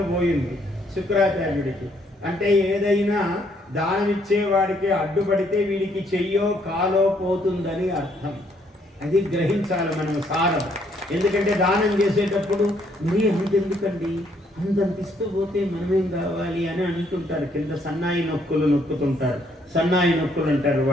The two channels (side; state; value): both; normal; correlation 0.69